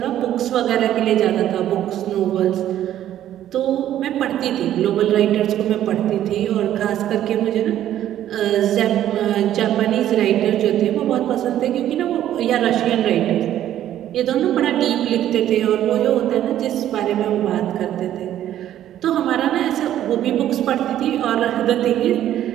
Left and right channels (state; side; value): quieter; left; 11.9 dB